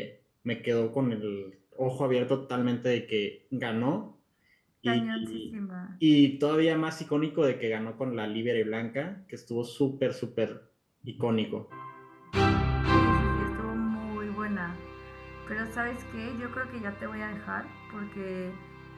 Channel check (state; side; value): identical; both; correlation 1.00